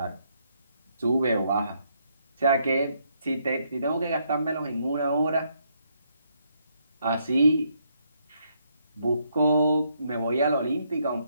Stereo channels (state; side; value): inverted; both; correlation -0.74